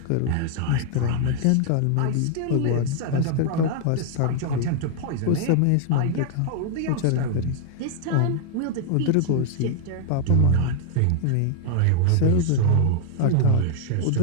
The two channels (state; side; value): different; both; correlation 0.00